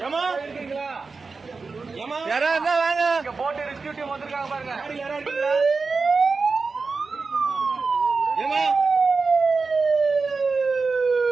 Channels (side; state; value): left; quieter; 4.3 dB